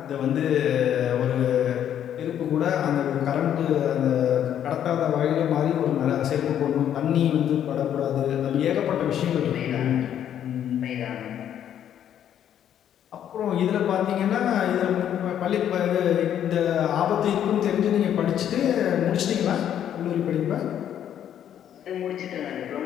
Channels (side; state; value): right; quieter; 10.0 dB